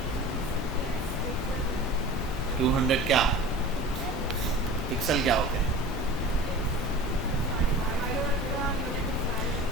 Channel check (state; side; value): normal; both; correlation 0.37